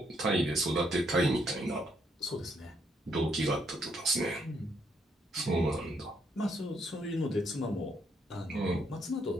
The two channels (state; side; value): normal; both; correlation 0.73